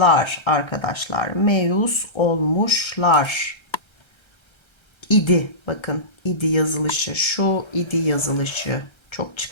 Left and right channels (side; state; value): right; late; 1.3 ms